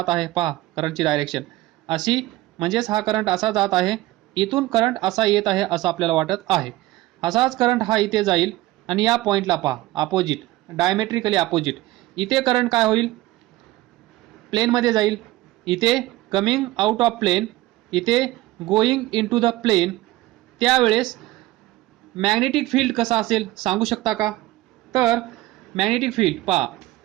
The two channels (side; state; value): left; quieter; 17.8 dB